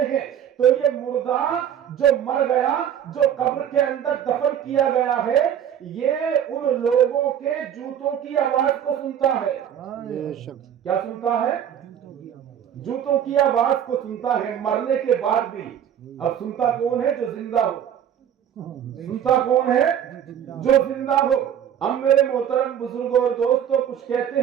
ہیں تو یہ مردہ جو مر گیا, جو قبر کے اندر دفن کیا گیا ہے, یہ ان لوگوں کے جوتوں کی آواز کو سنتا ہے. کیا سنتا ہے؟ جوتوں کی آواز کو سنتا ہے, مرنے کے بعد بھی. اب سنتا کون ہے؟ جو زندہ ہو. سنتا کون ہے؟ جو زندہ ہو. اب میرے محترم بزرگوں اور دوستوں, کچھ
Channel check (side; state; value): left; quieter; 9.5 dB